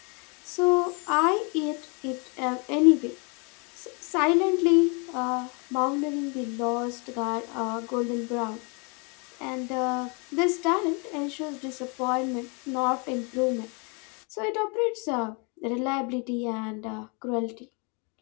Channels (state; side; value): quieter; right; 33.2 dB